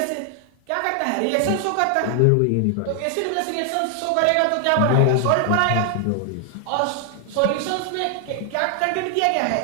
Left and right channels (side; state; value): both; different; correlation 0.00